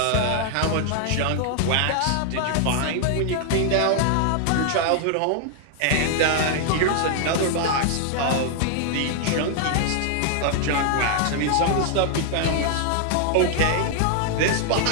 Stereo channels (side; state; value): both; different; correlation 0.00